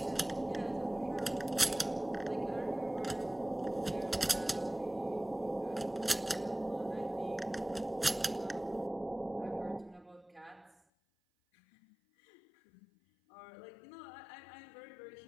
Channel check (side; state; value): right; drops out; at 10.8 s